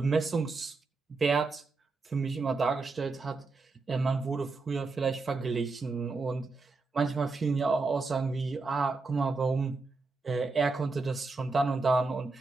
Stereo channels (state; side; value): quieter; left; 3.9 dB